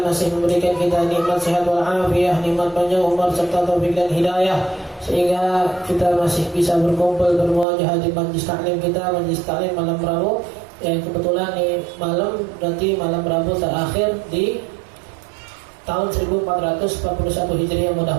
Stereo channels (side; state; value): left; drops out; at 7.7 s